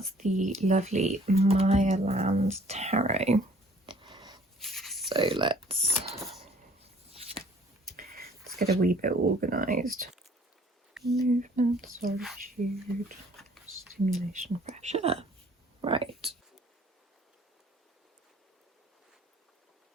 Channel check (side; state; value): both; normal; correlation 0.57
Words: the lovely Mayaland Tarot. So let's get a wee bit organised. Movement, solitude, stimulation, pressure. Right.